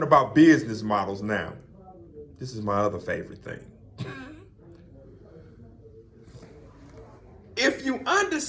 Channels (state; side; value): identical; both; correlation 1.00